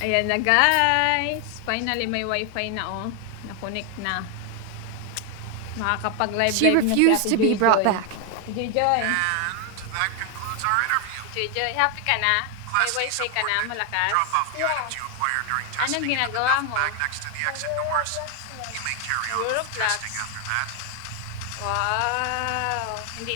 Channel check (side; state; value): both; different; correlation 0.01